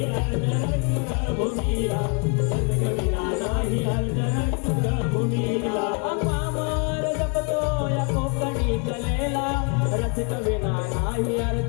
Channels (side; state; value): right; quieter; 37.2 dB